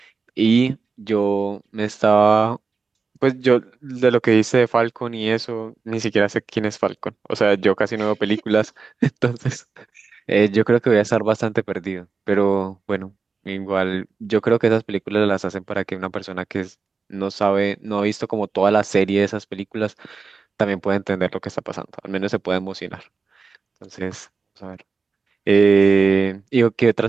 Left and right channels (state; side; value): quieter; left; 4.6 dB